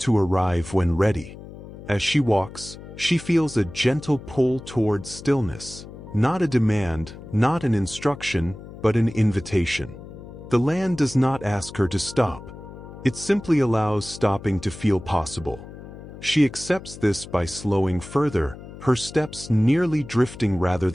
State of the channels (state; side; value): noise; left; hum, 15 dB below the sound